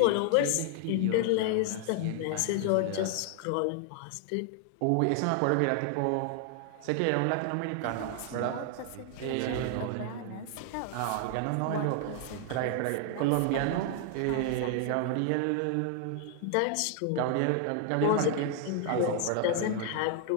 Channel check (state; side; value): different; both; correlation 0.00